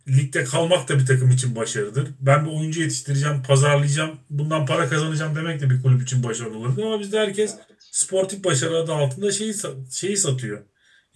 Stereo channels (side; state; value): both; identical; correlation 1.00